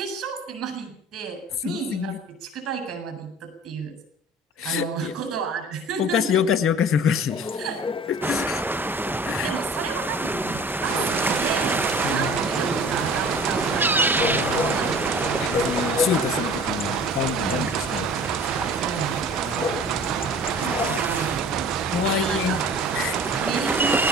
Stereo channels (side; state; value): both; normal; correlation 0.44